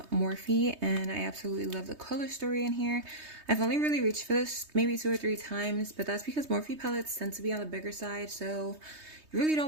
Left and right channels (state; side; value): late; left; 3.2 ms